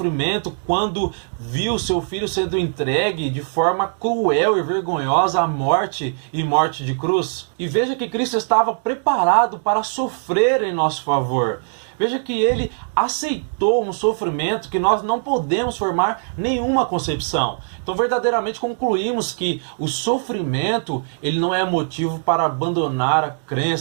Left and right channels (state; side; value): silent; left; digital silence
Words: quando viu seu filho sendo entregue de forma cruel e vergonhosa à morte e morte de cruz? E veja que Cristo estava preparado para sofrer em nosso favor. Veja que ele aceitou um sofrimento que nós não podemos formar nenhuma concepção. Então verdadeiramente concluímos que o sofrimento ele não é motivo para abandonar a